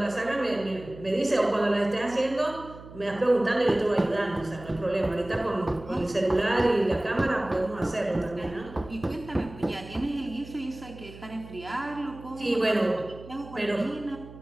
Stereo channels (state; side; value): noise; right; hum, 17 dB below the sound